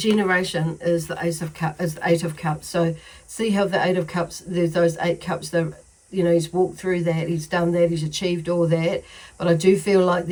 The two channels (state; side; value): identical; both; correlation 1.00